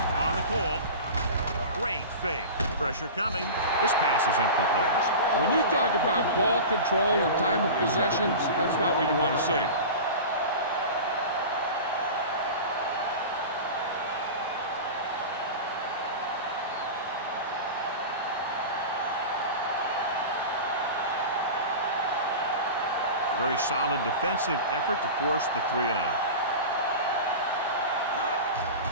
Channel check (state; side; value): inverted; both; correlation -0.30